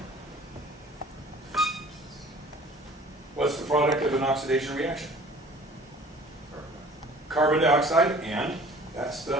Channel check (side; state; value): both; normal; correlation 0.48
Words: What's the product of an oxidation reaction? Carbon dioxide, and that's